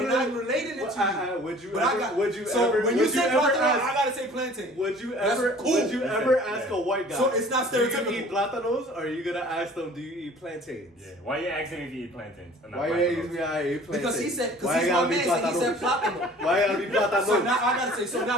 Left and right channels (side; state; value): both; normal; correlation 0.48